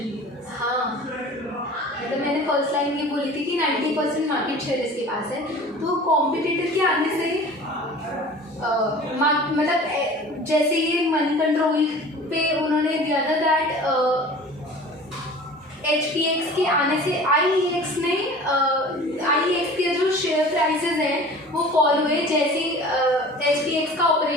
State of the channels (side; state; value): both; normal; correlation 0.42